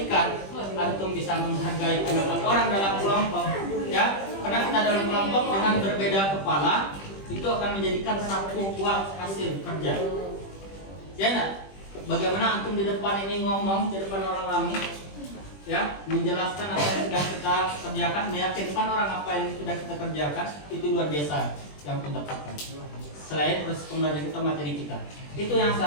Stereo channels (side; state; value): right; late; 20 ms